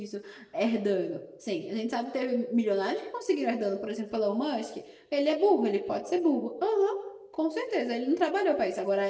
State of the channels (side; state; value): both; identical; correlation 1.00